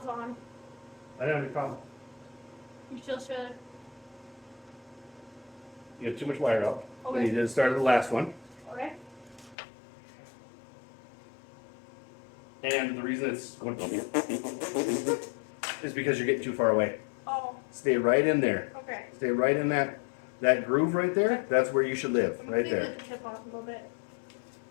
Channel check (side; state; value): right; drops out; at 9.6 s